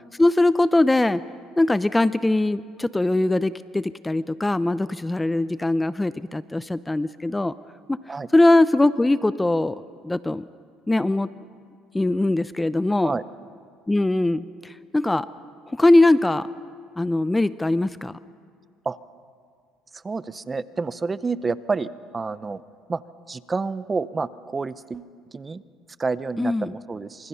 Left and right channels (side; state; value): both; normal; correlation 0.97